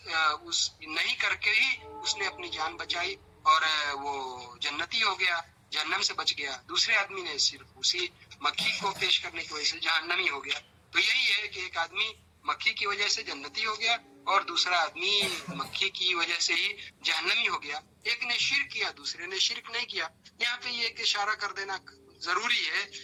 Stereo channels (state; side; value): identical; both; correlation 1.00